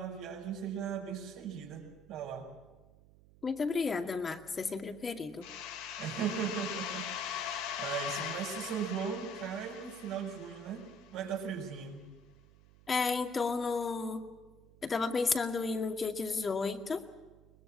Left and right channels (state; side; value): noise; right; hum, 24 dB below the sound